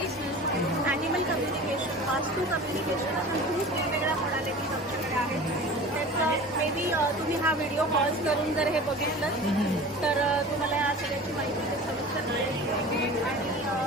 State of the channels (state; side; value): normal; both; correlation 0.38